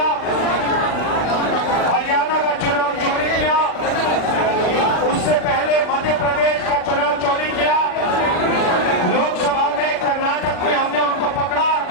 हरियाणा का चुनाव चोरी किया, उससे पहले मध्य प्रदेश का चुनाव चोरी किया, लोकसभा में कर्नाटक में हमने उनको पकड़ा।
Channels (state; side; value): late; right; 40 ms